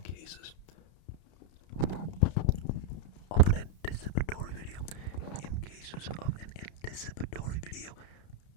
cases of an anticipatory video,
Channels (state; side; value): late; right; 31 ms